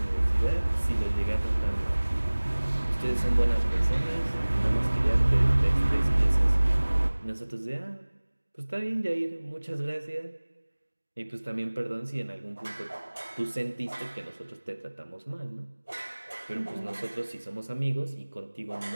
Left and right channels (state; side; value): inverted; both; correlation -1.00